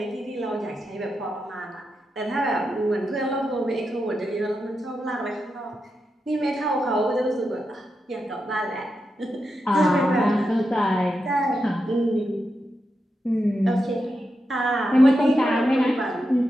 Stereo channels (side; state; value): both; normal; correlation 0.87